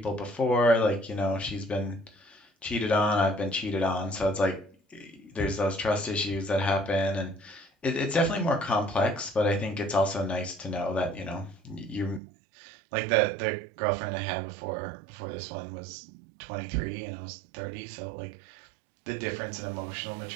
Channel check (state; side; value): drops out; left; at 12.2 s